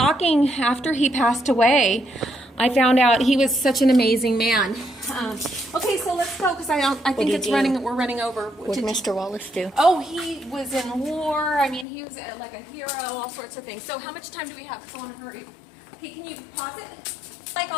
after he passed away. I found out he was such an amazing man. Okay, so let's go because I think we're running over. What did Mr. Wallace do? Oh, he was in war. I mean, he was like a hero, all sorts of things. So how much time do we have? I want to hurry. Okay, can you pause it? Like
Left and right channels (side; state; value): right; drops out; at 11.9 s